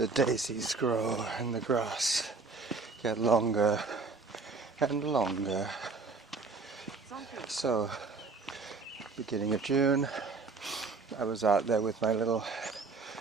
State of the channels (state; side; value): quieter; left; 4.2 dB